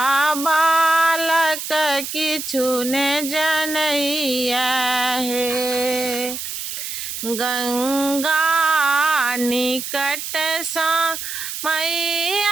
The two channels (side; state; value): right; noise; hiss, 6 dB below the sound